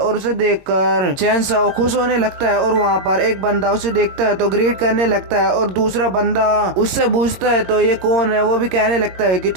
उसे देखकर चैनसो खुश होने लगता है। और वहाँ पर एक बंदा उसे देखता है तो ग्रीट करने लगता है और दूसरा बंदा उससे पूछता है तो ये कौन है। वो भी कहने लगता है कि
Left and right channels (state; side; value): late; left; 21 ms